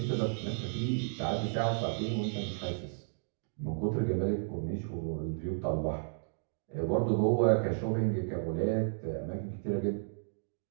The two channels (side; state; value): left; silent; digital silence